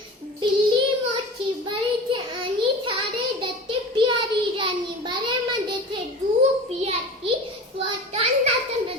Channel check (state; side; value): normal; both; correlation 0.35